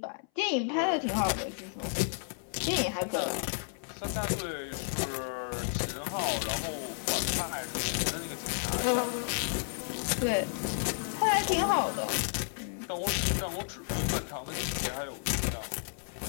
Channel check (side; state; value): right; silent; 56 dB below the other